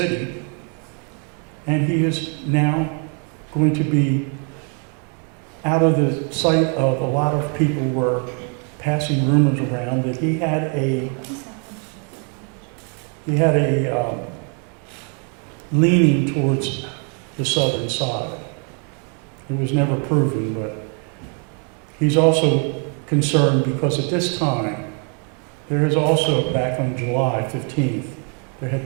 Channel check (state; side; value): quieter; left; 39.6 dB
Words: and he is now going to be out of the sight of a lot of people. Were passing rumors around that he had a leaning towards the southern side. It was never proven, but he's also concerned because at this time, there is also, back on July 15th, there had